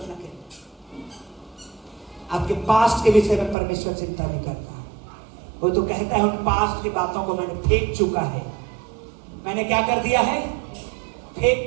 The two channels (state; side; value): drops out; left; at 3.6 s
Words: के। आपके पास्ट के विषय में परमेश्वर चिंता नहीं करता। वो तो कहता है उन पास्ट की बातों को मैंने फेंक चुका है। मैंने क्या कर दिया है?